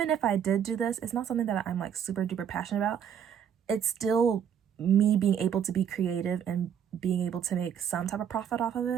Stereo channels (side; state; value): left; quieter; 8.4 dB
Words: if I did do this, it's not something that I'm like super duper passionate about. It's still me being able to be creative and being able to make some type of profit off of